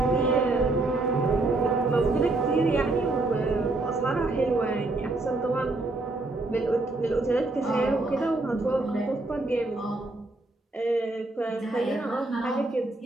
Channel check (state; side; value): quieter; left; 3.0 dB